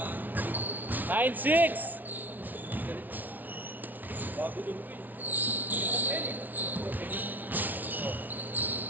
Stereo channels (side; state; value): left; late; 0.081 ms